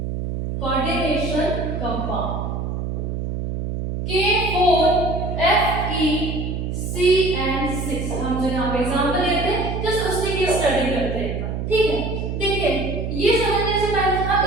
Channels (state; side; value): noise; right; hum, 3 dB below the sound